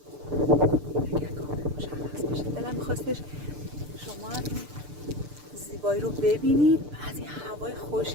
اگر کامل مشخص باشه. دلم می‌خواستش شما هم زیبایی رو ببینید، از این هوای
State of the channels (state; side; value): late; left; 6.8 ms